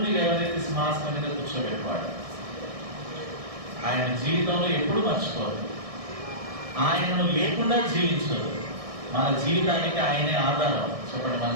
లేవనెత్తి సింహాసనం మీద కూర్చోబెట్టేవాడు. ఆయన జీవితంలో ఎప్పుడు మర్చిపోదు. ఆయనను లేకుండా జీవించదు. మన జీవితానికి ఆయనే ఆధారం. చెప్పండి, మన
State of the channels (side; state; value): left; late; 1.6 ms